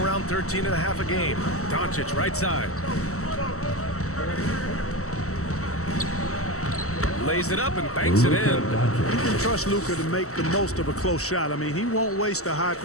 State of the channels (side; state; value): right; late; 0.64 ms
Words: 13.5 a game. Doncic right side. Lays it up and banks it in. You can trust Luka to make the most of a close shot. I mean, he won't waste a high